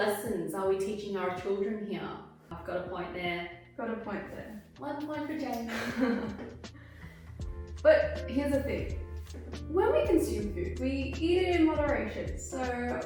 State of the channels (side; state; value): both; identical; correlation 1.00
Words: are we teaching our children here? I've got a point there. Got a point there. 1 point for Jamie. But here's the thing. When we consume food, we eat it in moderation. So